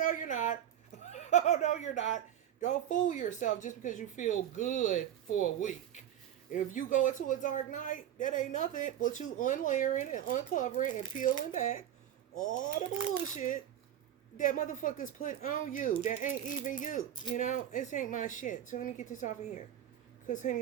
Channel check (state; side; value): quieter; left; 10.7 dB